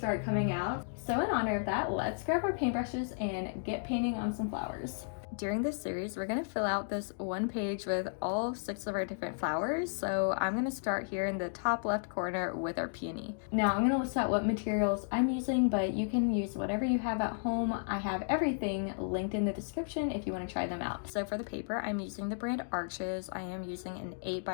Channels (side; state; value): right; silent; digital silence